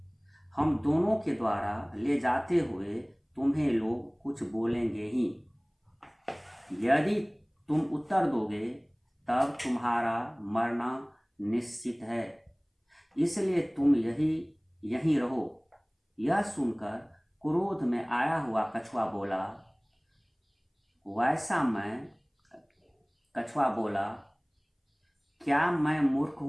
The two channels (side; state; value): both; identical; correlation 1.00